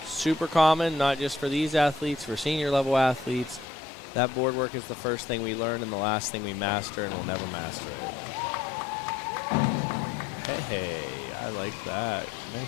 super common, not just for these athletes, for senior level athletes. That board work is the first thing we learn and the last thing we master, and we'll never master it. Hey, I like that.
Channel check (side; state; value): right; drops out; at 3.7 s